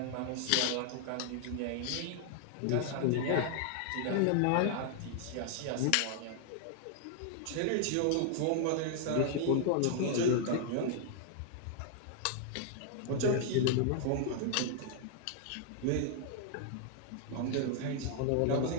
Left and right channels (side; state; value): both; different; correlation 0.00